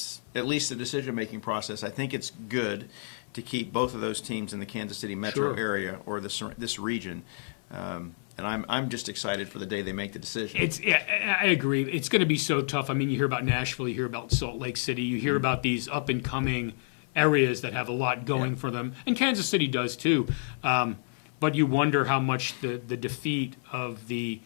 at least the decision-making process. I think it's good to keep both of those teams in the Kansas City metro area or this region. And I'm just excited for the day they make the decision. I agree. It's going to be so tough. I mean, you hear about Nashville, you hear about Salt Lake City, you hear about these up-and-coming areas that have a lot going for them, and Kansas City does too. But you wonder how much the defeat of the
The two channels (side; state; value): right; silent; 55 dB below the other